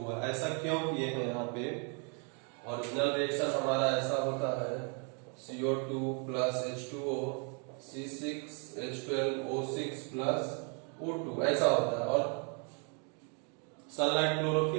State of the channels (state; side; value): quieter; left; 36.7 dB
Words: ऐसा क्यों किए हैं, यहाँ पे ओरिजिनल रिएक्शन हमारा ऐसा होता है, CO2 plus H2O C6H12O6 plus O2 ऐसा होता है। और सनलाइट